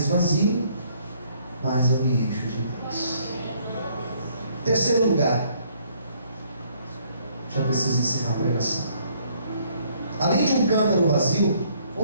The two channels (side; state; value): both; inverted; correlation -0.65